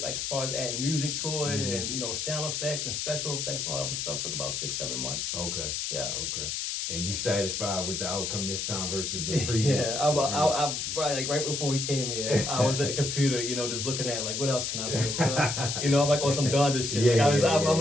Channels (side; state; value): left; noise; hiss, 2 dB below the sound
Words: as far as adding music to it and sound effects and special effects and all that stuff. Took about 6-7 months. Okay. Yeah. Okay. and you satisfied with the outcome this time versus the previous. Yeah, I right before we came here, I was at the computer, just looking at like what else can I put into, I'm like on some Donda shit. I'm